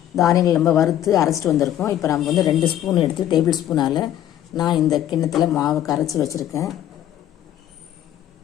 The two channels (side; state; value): right; quieter; 11.7 dB